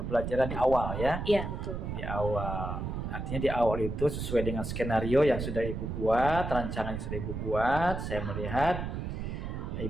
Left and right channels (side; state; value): right; noise; rumble, 4 dB below the sound